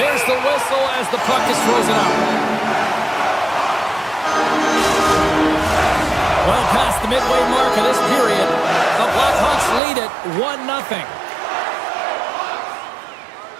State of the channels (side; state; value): left; drops out; at 9.8 s